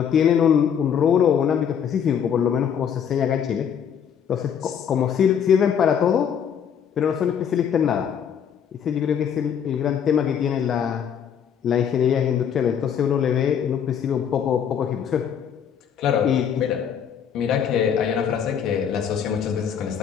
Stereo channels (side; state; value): right; quieter; 8.1 dB